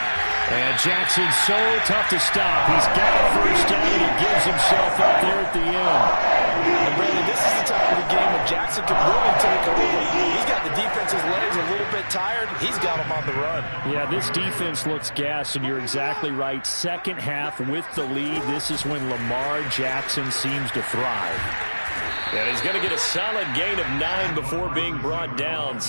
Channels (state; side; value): inverted; both; correlation -1.00